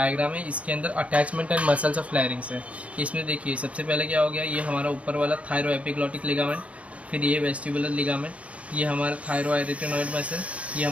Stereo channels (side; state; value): left; late; 0.064 ms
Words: है, इसके अंदर अटैचमेंट एंड मसल्स ऑफ लैरिंग्स है। इसमें देखिए सबसे पहले क्या हो गया, ये हमारा ऊपर वाला थायरो एपिग्लॉटिक लिगामेंट, फिर ये वेस्टिबुलर लिगामेंट, ये हमारा थायरो एरिटेनॉइड मसल, ये